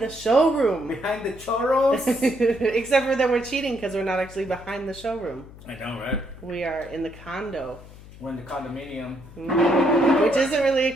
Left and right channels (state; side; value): noise; left; hum, 19 dB below the sound